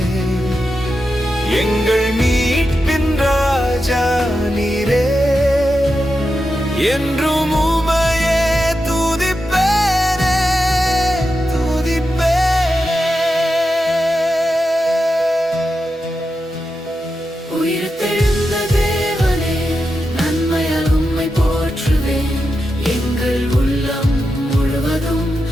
எங்கள் மீட்பின் ராஜா நீரே. என்றும் உமையே துதிப்பேனே, துதிப்பேனே. உயிர்த்தெழுந்த தேவனே, நன்மையால் உம்மை போற்றுவேன். எங்கள் உள்ளம் முழுவதும்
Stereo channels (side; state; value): both; normal; correlation 0.89